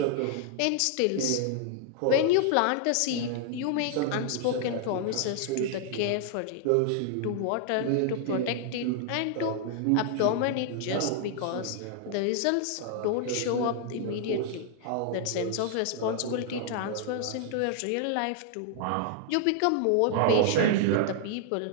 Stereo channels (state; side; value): different; both; correlation 0.00